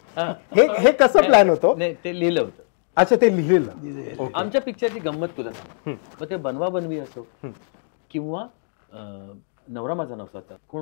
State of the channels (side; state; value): right; silent; digital silence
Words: हे कसं प्लॅन होतं? नाही ते लिहिलं होतं. अच्छा ते लिहिलेलं. आमच्या पिक्चरची गंमत तुला सांग. मग ते बनवा बनवी असो किंवा नवरा माझा नवसाचा